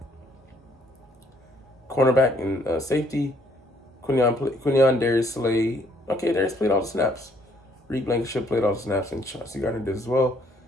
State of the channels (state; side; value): normal; both; correlation 0.65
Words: Cornerback and safety, Quinion Darius Slay. Okay, Darius played all the snaps. Reed Blankenship played all the snaps, and Chauncey Gardner did as well.